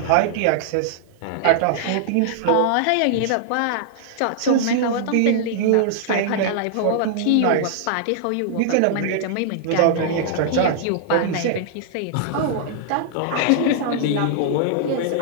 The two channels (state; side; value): different; both; correlation -0.01